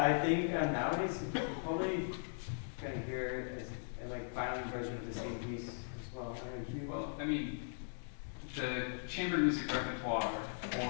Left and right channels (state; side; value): silent; right; digital silence